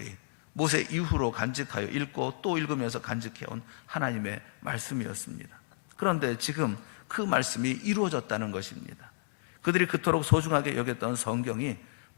모세 이후로 간직하여 읽고 또 읽으면서 간직해온 하나님의 말씀이었습니다. 그런데 지금 그 말씀이 이루어졌다는 것입니다. 그들이 그토록 소중하게 여겼던 성경이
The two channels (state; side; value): silent; right; digital silence